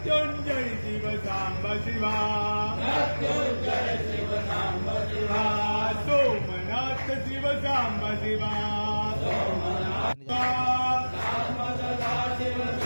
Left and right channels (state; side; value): inverted; both; correlation -1.00